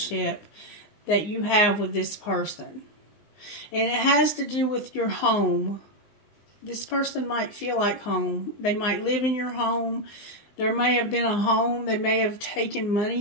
that you have with this person. And it has to do with your home. This person might feel like home. They might live in your home. There may have been a home. They may have taken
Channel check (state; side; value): late; right; 19 ms